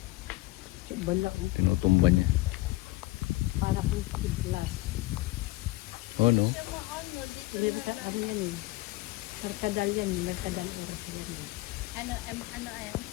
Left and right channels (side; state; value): right; quieter; 19.4 dB